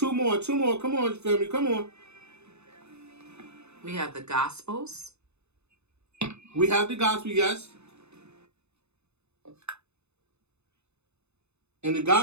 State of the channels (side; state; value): left; late; 0.81 ms